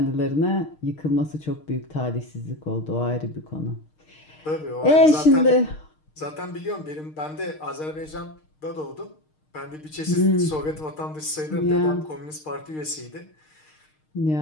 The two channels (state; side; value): late; right; 6.5 ms